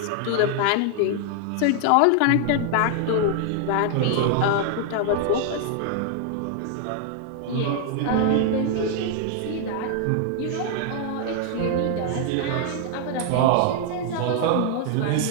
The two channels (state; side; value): different; both; correlation 0.00